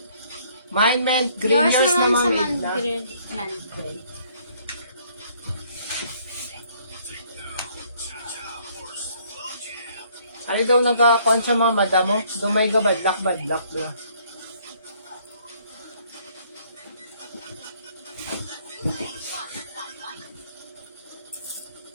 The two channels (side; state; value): both; inverted; correlation -0.63